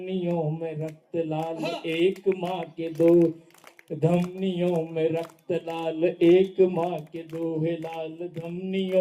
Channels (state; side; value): identical; both; correlation 1.00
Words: में रक्त लाल। एक माँ के दो धमनियों में रक्त लाल। एक माँ के दोहे लाल,